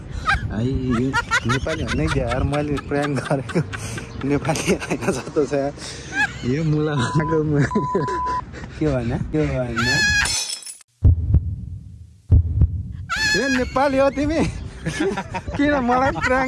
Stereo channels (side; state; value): both; identical; correlation 1.00